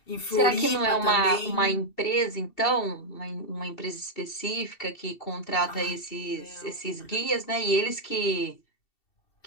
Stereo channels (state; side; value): late; right; 2.7 ms